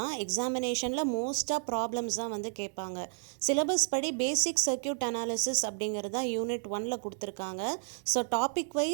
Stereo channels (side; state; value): left; silent; 57 dB below the other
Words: எக்ஸாமினேஷனில் மோஸ்ட்டாக ப்ராப்ளம்ஸ் தான் வந்து கேட்பாங்க. சிலபஸ் படி பேசிக் சர்க்யூட் அனாலிசிஸ் அப்படிங்கிறது தான் யூனிட் 1ல் கொடுத்துருக்காங்க. ஸோ டாபிக்